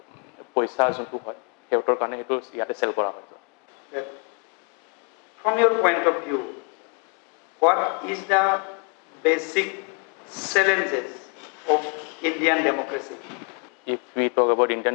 পইচা যোনটো হয় সিহঁতৰ কাৰণে সেইটো ইয়াতে চেল কৰা হয় that from your point of view, what is the basic challenges of Indian democracy? If we talk about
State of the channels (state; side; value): quieter; right; 38.7 dB